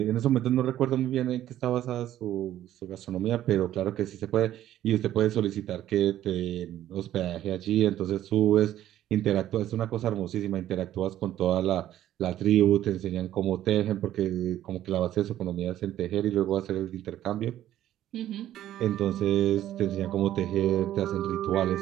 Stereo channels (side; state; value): left; quieter; 12.5 dB